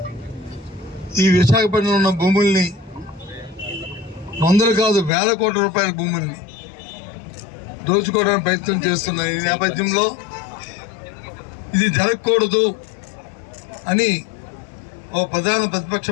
ఈ విశాఖపట్నంలో ఉన్న భూముల్ని వందలు కాదు వేల కోట్ల రూపాయల భూముల్ని దోచుకోవడానికి ప్రయత్నం చేస్తున్న ఈ నేపథ్యంలో ఇది జరగకూడదు అని ఓ ప్రధాన ప్రతిపక్ష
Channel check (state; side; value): drops out; right; at 5.1 s